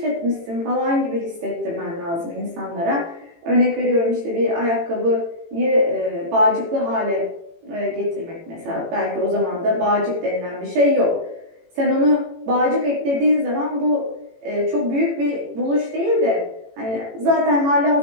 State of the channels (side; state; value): left; late; 18 ms